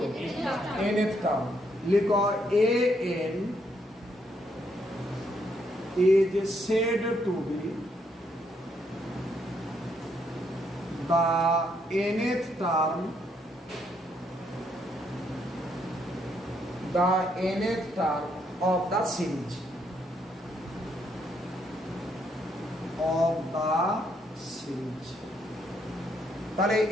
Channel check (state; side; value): normal; both; correlation 0.74